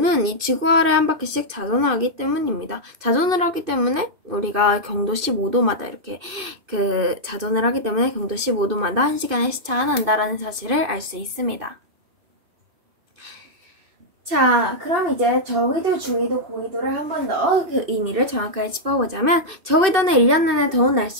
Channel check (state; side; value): late; left; 2.5 ms